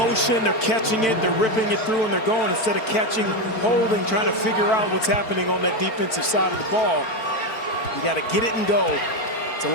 they're catching it, they're ripping it through, and they're going instead of catching, holding, trying to figure out what's happening on that defensive side of the ball. You got to get it and go. It's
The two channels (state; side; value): late; right; 4.5 ms